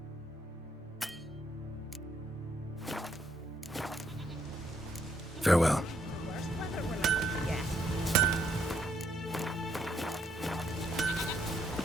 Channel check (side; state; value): both; normal; correlation 0.72